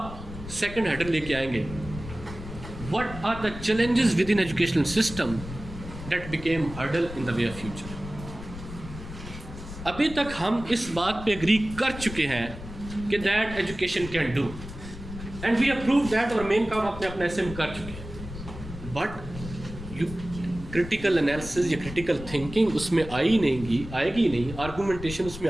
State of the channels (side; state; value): left; noise; rumble, 12 dB below the sound